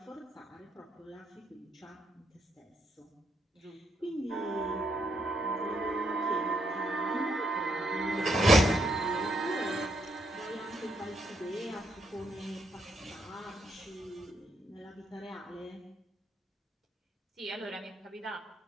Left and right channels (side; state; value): both; normal; correlation 0.76